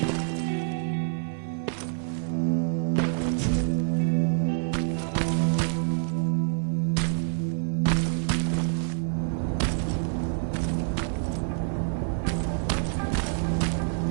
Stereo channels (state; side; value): silent; left; 60 dB below the other